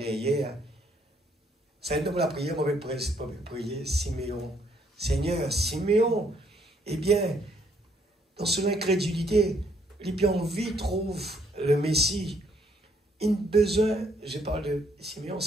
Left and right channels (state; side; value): normal; both; correlation 0.68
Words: C'est donc la prière, on peut prier Siméon. Seigneur, Siméon, eh bien, dans son incrédulité, il a envie trouve le Messie. Il a besoin, je parle de Siméon,